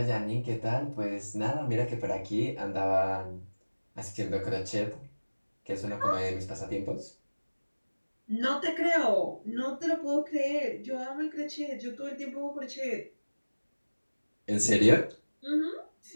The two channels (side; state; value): both; inverted; correlation -1.00